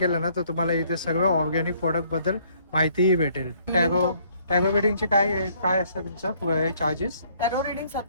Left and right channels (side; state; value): both; inverted; correlation -0.64